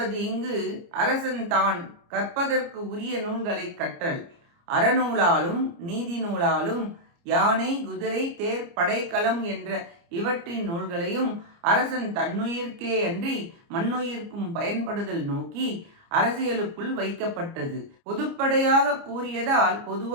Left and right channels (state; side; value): late; left; 29 ms